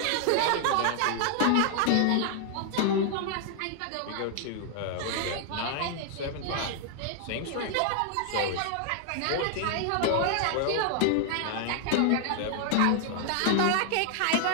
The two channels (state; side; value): different; both; correlation 0.00